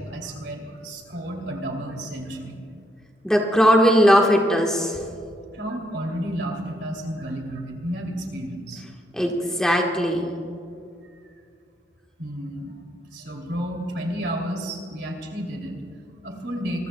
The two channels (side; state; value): both; normal; correlation 0.75